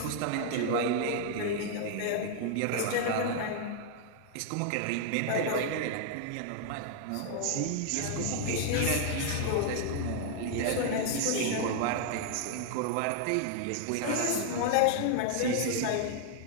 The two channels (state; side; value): different; both; correlation 0.00